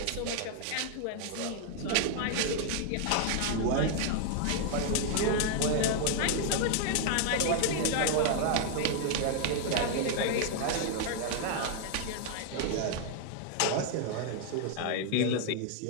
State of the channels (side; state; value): both; different; correlation 0.00